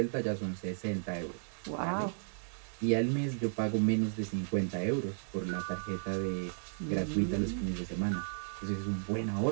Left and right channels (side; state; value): left; silent; digital silence